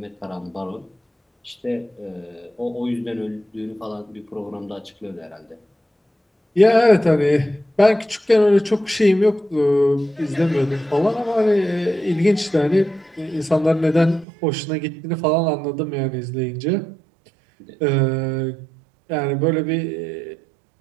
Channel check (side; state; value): left; drops out; at 14.2 s